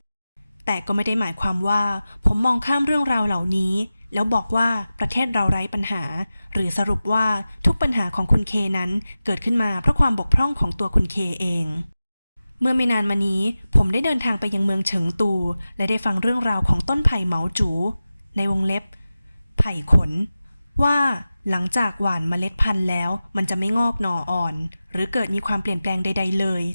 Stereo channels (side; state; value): both; inverted; correlation -0.95